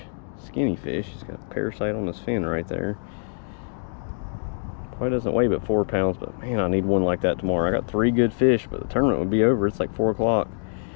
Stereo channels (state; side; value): silent; right; 57 dB below the other